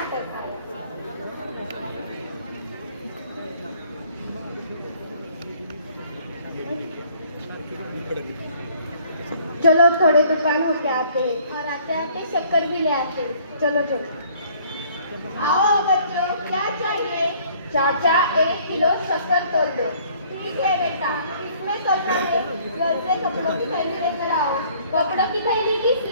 आया। चलो थोड़े दुकान होके आते हैं और आते आते शक्कर भी ले आते हैं। चलो चलो आओ बच्चों, क्या चाहिए? चाचा 1 किलो शक्कर तोल दो। ठीक है बेटा, इसमें तोलना है। घर से कपड़ों की थैली लेकर आओ। कपड़ों की थैली किस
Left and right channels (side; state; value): both; inverted; correlation -0.57